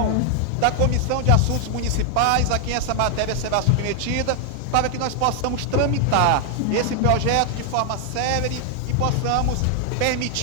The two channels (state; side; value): different; both; correlation 0.00